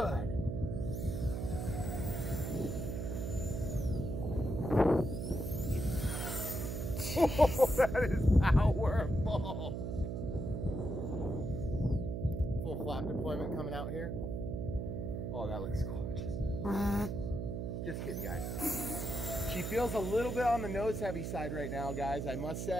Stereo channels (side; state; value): right; noise; hum, 3 dB below the sound